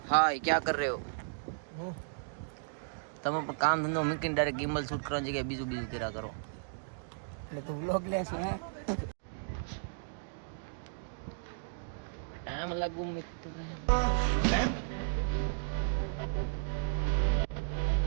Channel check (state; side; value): silent; left; digital silence